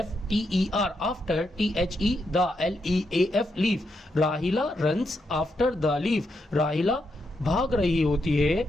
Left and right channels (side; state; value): both; normal; correlation 0.82